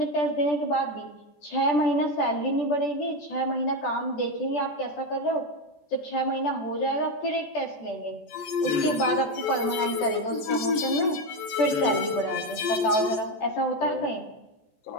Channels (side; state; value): right; late; 14 ms